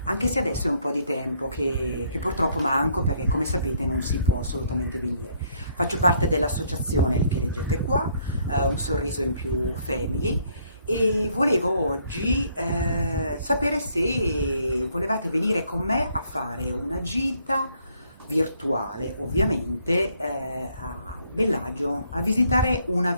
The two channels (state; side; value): inverted; both; correlation -0.67